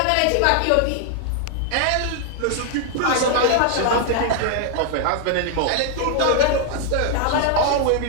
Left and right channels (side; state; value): both; different; correlation 0.00